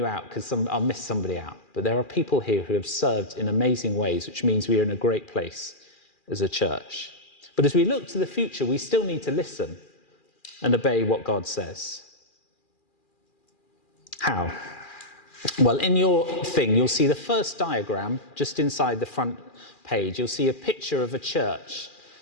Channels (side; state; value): right; late; 2.4 ms